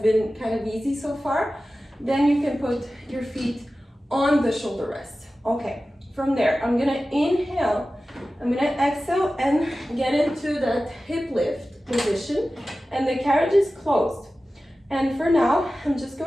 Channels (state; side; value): normal; both; correlation 0.95